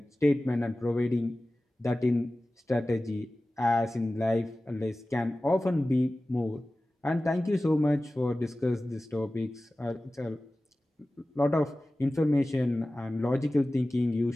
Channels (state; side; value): normal; both; correlation 0.96